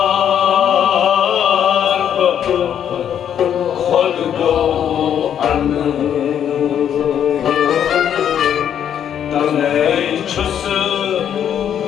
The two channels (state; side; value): quieter; right; 9.3 dB